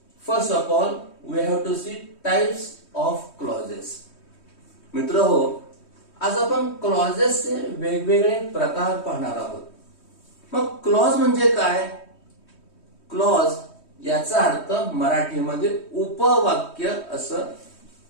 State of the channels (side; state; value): right; late; 3.1 ms